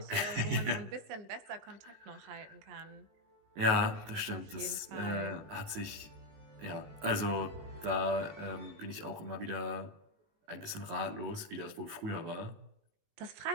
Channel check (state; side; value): late; left; 19 ms